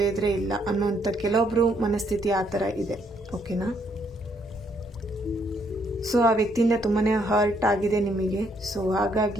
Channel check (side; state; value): both; normal; correlation 0.71